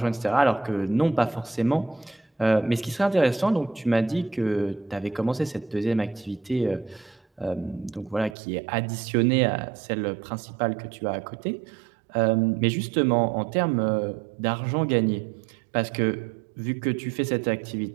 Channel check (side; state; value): left; drops out; at 8.3 s